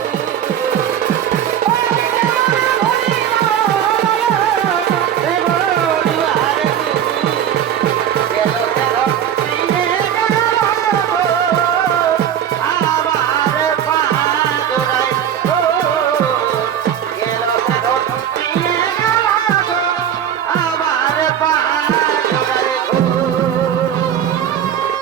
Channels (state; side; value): quieter; left; 9.6 dB